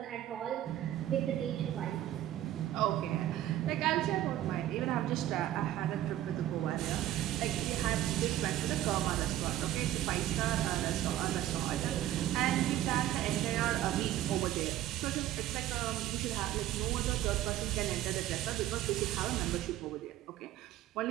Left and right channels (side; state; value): left; quieter; 13.2 dB